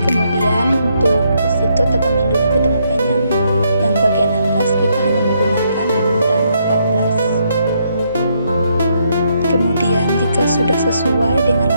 Kemudian untuk Institut Agama Hindu Negeri Tampung Penyang yang bagian atas kita hanya menggunakan ukuran 14. Kemudian jika sudah sesuai dengan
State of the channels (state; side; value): inverted; both; correlation -0.75